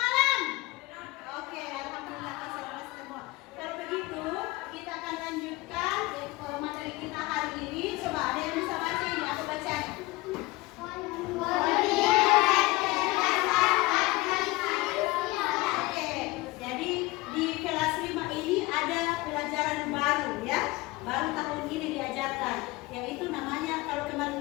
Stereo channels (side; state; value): right; quieter; 21.2 dB